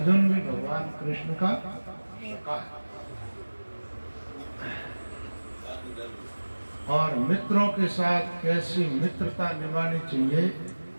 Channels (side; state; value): both; inverted; correlation -1.00